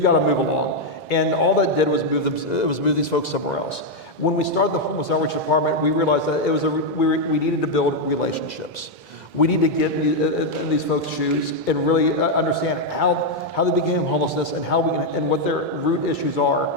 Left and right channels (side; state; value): both; normal; correlation 0.01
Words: to move along. And all that did was move these folks somewhere else. When we started the homeless outreach department, we realized that we needed to build relationships. We need to get in these folks' shoes and really understand how they became homelessness and and what their root issues are